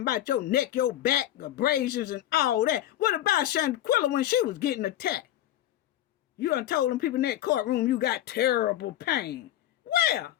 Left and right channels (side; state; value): right; quieter; 12.9 dB